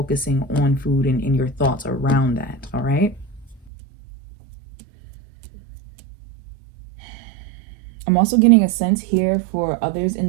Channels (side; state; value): left; drops out; at 3.7 s